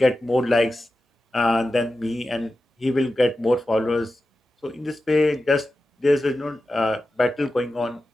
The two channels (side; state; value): both; normal; correlation 0.92